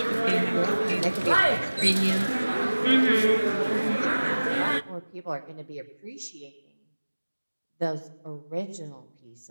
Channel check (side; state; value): both; inverted; correlation -1.00